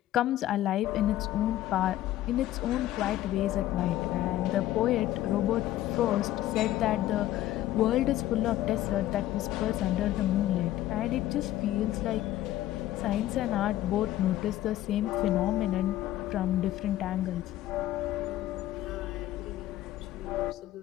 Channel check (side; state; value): right; quieter; 13.9 dB